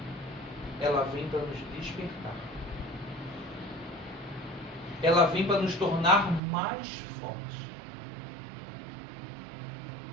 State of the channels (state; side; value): drops out; left; at 6.4 s